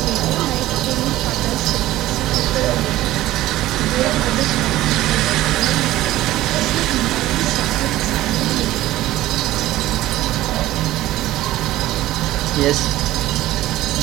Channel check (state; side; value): quieter; left; 15.6 dB